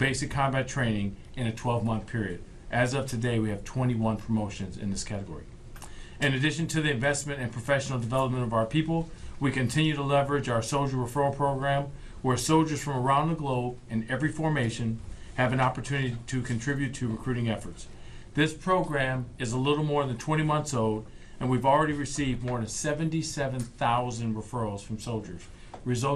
combat training in a 12-month period. As of today, we have 21 promotions in this category. In addition to the investment and professional development of our people, we continue to leverage our soldier referral program, where soldiers from around the globe in every formation have an opportunity to contribute to recruiting efforts. This program is a little more than 20 months old, and we've already received more than 77,000 referrals from soldiers,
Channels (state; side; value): identical; both; correlation 1.00